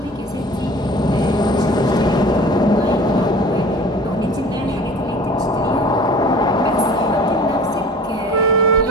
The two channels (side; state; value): both; normal; correlation 0.44